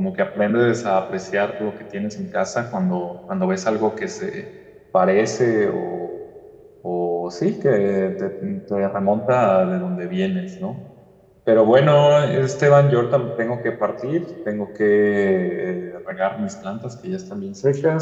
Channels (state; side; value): identical; both; correlation 1.00